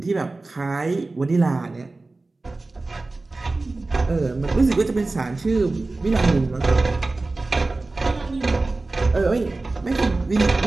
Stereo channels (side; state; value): left; quieter; 3.3 dB